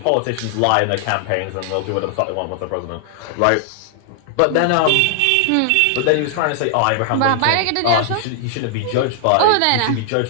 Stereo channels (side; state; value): both; different; correlation -0.01